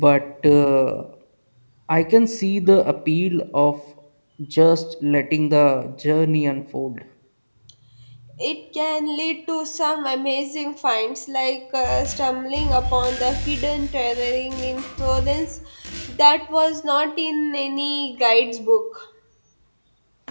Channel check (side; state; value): both; inverted; correlation -1.00